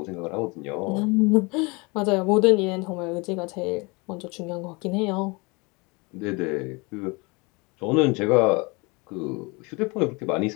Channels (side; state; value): right; quieter; 27.6 dB